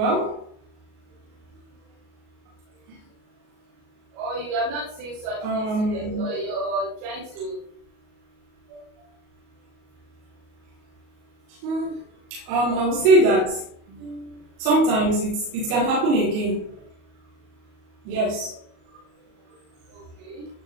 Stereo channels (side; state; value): left; late; 37 ms